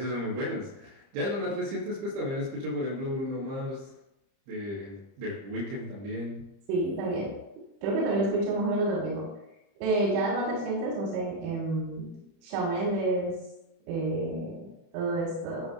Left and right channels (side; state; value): left; late; 30 ms